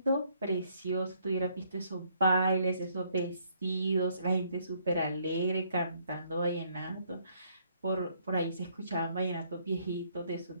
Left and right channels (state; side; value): inverted; both; correlation -0.67